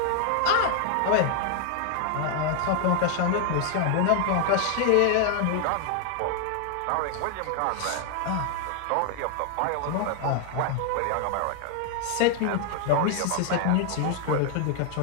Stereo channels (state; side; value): different; both; correlation 0.00